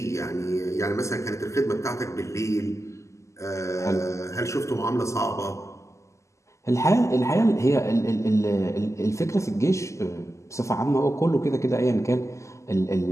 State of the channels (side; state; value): right; late; 0.14 ms